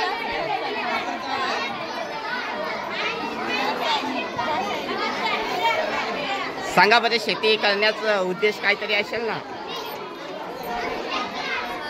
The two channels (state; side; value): identical; both; correlation 1.00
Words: सांगा बरं, शेती करण्याचा उद्देश काहीतरी असेल ना?